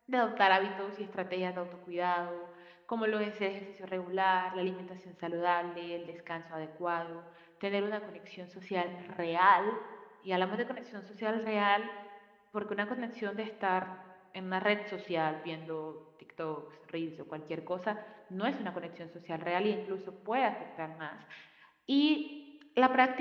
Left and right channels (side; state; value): both; identical; correlation 1.00